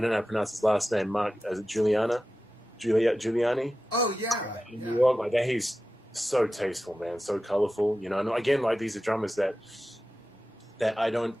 know how to pronounce his last name. Mark, is it Giuliani? Oh yeah. In New York, like that. He's so tasteful, man. So colorful, you know. And again, like, these are drummers that I don't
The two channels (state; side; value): normal; both; correlation 0.93